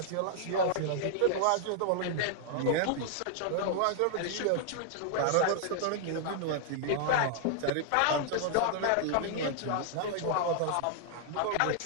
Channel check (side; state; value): both; different; correlation -0.01